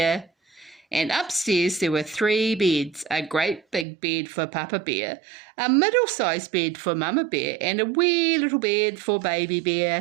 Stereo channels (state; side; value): drops out; left; at 3.9 s